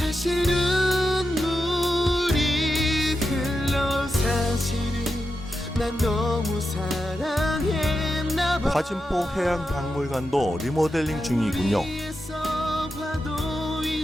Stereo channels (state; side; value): normal; both; correlation 0.88